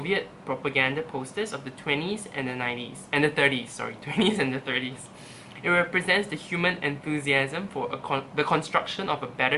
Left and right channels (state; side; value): identical; both; correlation 1.00